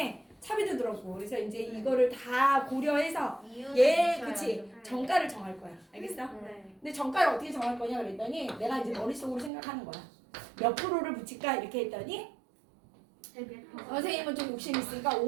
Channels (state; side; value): drops out; left; at 9.5 s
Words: 차비도 들었고 그래서 이제 이거를 다 고려해서 그치? 정가를 정할 거야. 알겠어? 근데 정가를 어떻게 정할 거냐 그랬더니 내가 이제 머릿속으로 생각하는 거야. 몇 프로를 붙일까 이렇게 했더니 선생님은 좀 욕심 있으니까